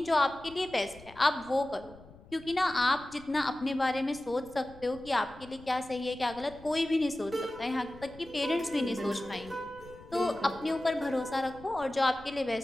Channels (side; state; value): left; noise; rumble, 21 dB below the sound